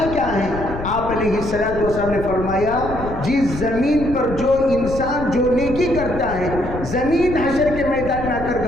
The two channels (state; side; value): noise; left; rumble, 9 dB below the sound